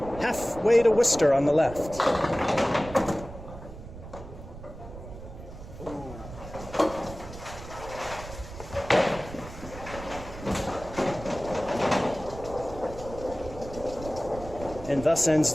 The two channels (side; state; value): right; noise; rumble, 13 dB below the sound